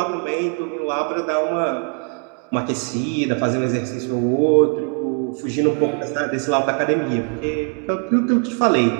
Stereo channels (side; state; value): left; quieter; 38.1 dB